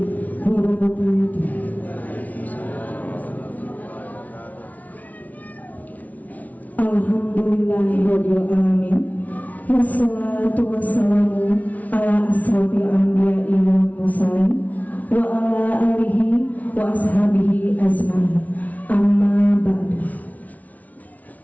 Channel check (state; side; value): late; right; 0.072 ms